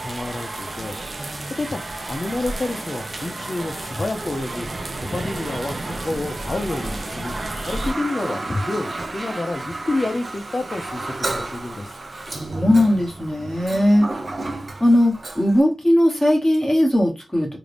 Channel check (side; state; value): both; normal; correlation 0.96